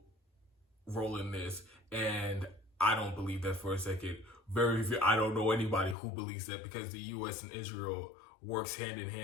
role in this, and I don't believe that for a second. I don't know anybody who believes that, because the U.S. and Israel works hand in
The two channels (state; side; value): drops out; right; at 6.0 s